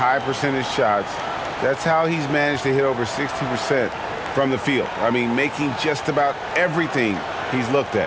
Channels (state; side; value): identical; both; correlation 1.00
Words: percentage shots. That's how he's managed to hit over 60% from the field. I mean, making just about everything he's looked